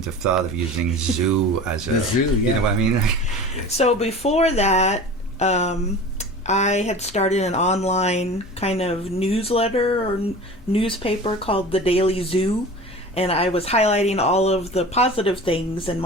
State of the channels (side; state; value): both; normal; correlation 0.36